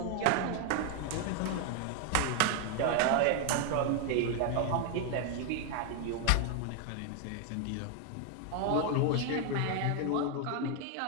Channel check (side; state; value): both; different; correlation 0.01